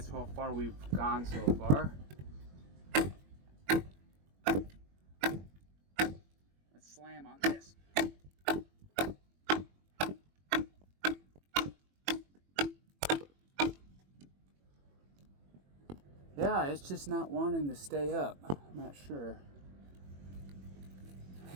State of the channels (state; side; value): late; left; 21 ms